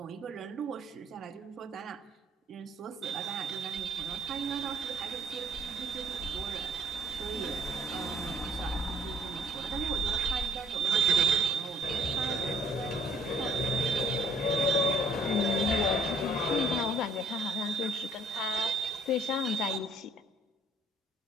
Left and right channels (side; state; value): both; normal; correlation 0.59